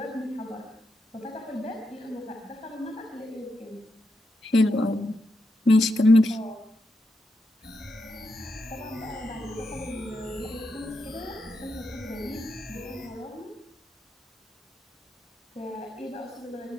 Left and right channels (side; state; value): both; normal; correlation 0.84